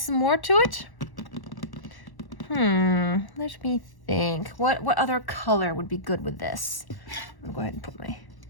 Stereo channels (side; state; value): right; late; 1.1 ms